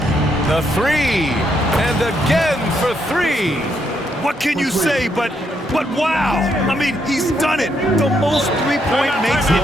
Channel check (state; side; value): normal; both; correlation 0.76